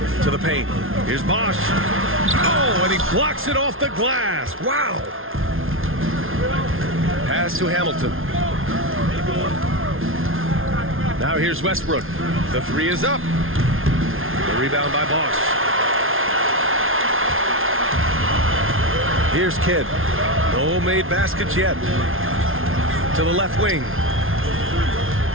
To the paint. Here's Bosch. Oh, and he blocks it off the glass. Wow. Pass to Hamilton. Now here's Westbrook. The 3 is up. The rebound by Bosch. Here's Kidd. No made baskets yet. To the left wing.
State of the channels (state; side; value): late; left; 0.60 ms